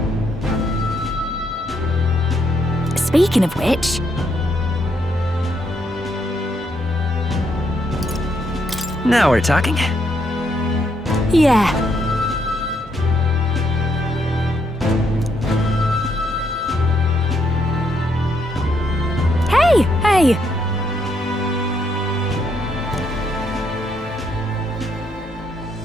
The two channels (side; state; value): both; normal; correlation 0.75